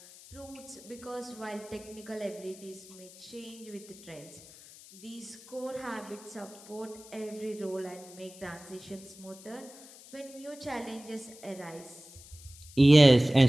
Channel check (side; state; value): left; noise; hiss, 19 dB below the sound